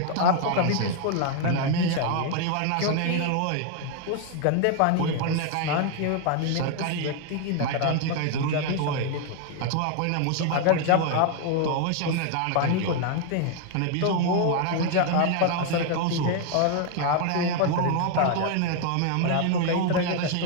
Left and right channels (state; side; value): different; both; correlation 0.00